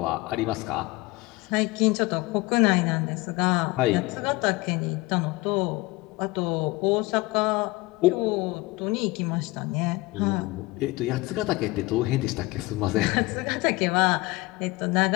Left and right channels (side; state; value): right; quieter; 21.8 dB